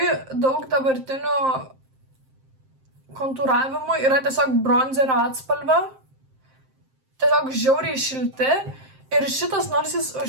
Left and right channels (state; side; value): late; left; 7.6 ms